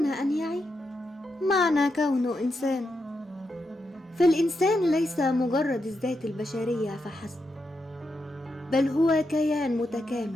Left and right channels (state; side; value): normal; both; correlation 0.85